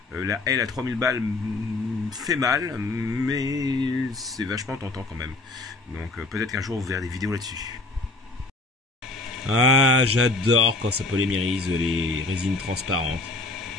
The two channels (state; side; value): quieter; right; 3.3 dB